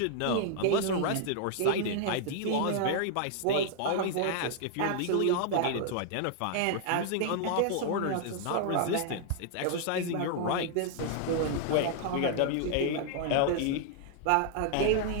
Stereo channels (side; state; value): both; different; correlation 0.00